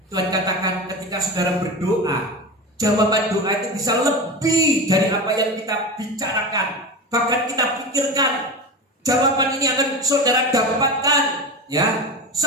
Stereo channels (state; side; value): normal; both; correlation 0.26